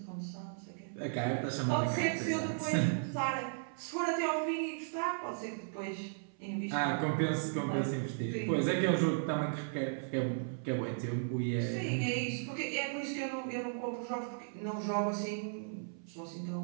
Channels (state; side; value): silent; left; 54 dB below the other